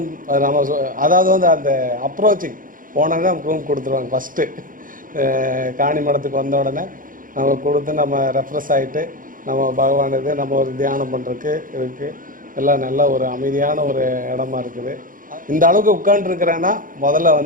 நம்ம அதாவது வந்து அந்த அப்ரோச்சிங் போனோன்னா நமக்கு ரூம் கொடுத்துருவாங்க. ஃபஸ்ட்டு காணிமடத்துக்கு வந்த உடனே நம்ம கொடுத்து நம்ம ரெஃப்ரெஷ் ஆகிட்டு நம்ம பகவான் இது நம்ம ஒரு தியானம் பண்ணுறதுக்கு இருக்குது. எல்லாம் நல்ல ஒரு அமைதியான ஒரு இடமா இருக்குது. இந்த அளவுக்கு உட்காந்துருக்கிறேன்னா முதல்ல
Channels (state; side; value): late; left; 0.40 ms